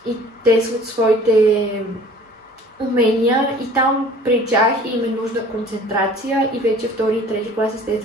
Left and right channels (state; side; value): normal; both; correlation 0.49